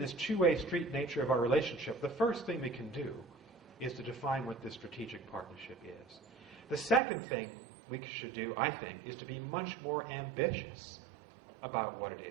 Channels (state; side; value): drops out; left; at 7.0 s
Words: this two-way street nature of our relationship, the first thing we can do is to define what this strategic partnership is. The second thing we should do, I think, is to be much more ambitious about what